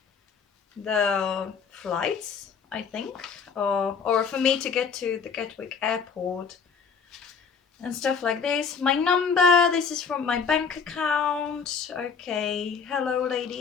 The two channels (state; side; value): quieter; right; 6.0 dB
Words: the flights, I think, or for me to get to the Gatwick airport and stuff like this. My number, this is from my bank account. Okay, hello